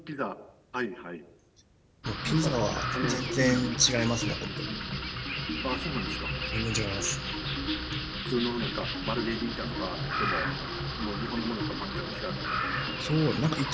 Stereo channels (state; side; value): identical; both; correlation 1.00